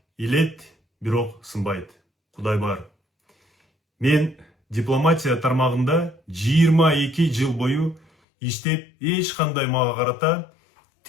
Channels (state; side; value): drops out; right; at 8.1 s